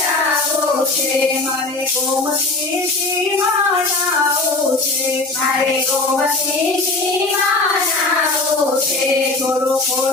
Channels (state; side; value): quieter; right; 3.2 dB